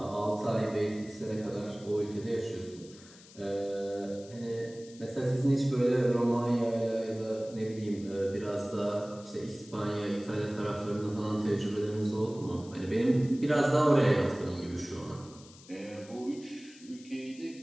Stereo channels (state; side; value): noise; left; hiss, 21 dB below the sound